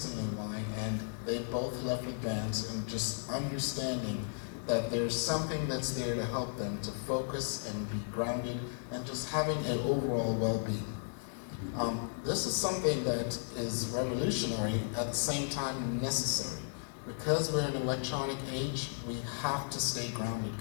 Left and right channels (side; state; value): right; silent; digital silence